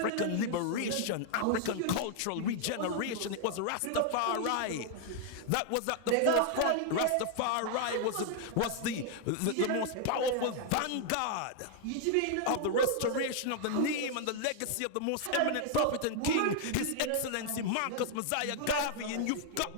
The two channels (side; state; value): both; different; correlation 0.00